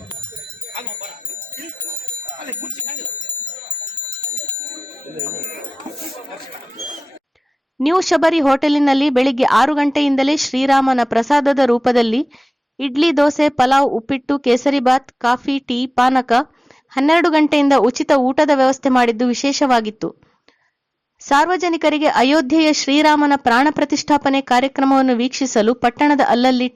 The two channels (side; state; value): both; normal; correlation 0.98